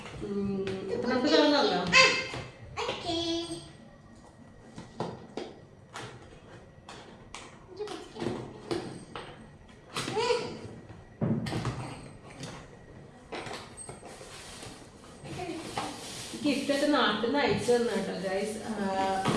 നമുക്ക് തുറന്നല്ലോ. ഗിഫ്റ്റൊക്കെ നാട്ടിൽ നിന്ന് അയച്ചു തന്നു കേട്ടോ ഗൈസ്.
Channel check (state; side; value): identical; both; correlation 1.00